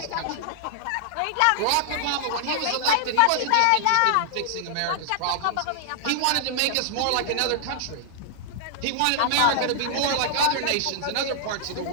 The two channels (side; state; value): both; different; correlation -0.01